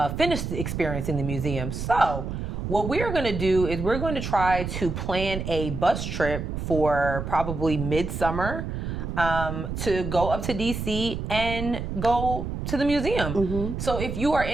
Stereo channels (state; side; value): noise; right; rumble, 5 dB below the sound